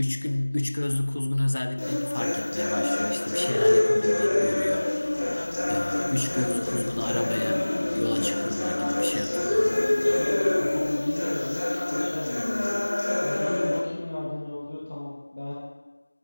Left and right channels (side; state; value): both; inverted; correlation -1.00